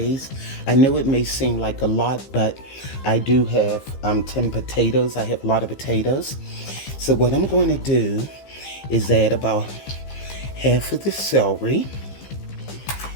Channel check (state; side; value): late; right; 15 ms